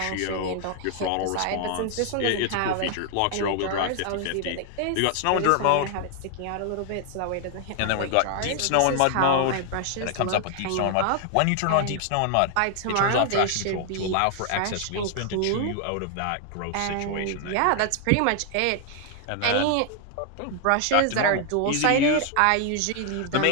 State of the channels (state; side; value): different; both; correlation 0.00